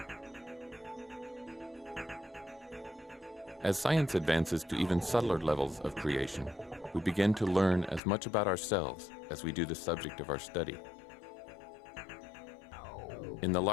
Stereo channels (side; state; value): right; drops out; at 8.0 s